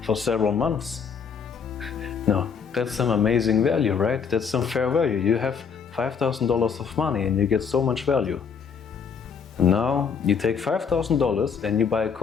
for several months. No, that's some amazing value, right? That's some fair value. You have $5,000 of money and you get so much value. And now you take $5,000 and you buy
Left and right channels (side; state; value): right; quieter; 6.4 dB